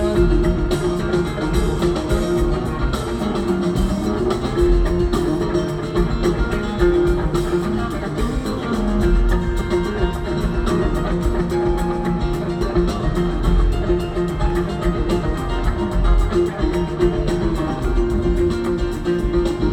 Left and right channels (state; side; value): identical; both; correlation 1.00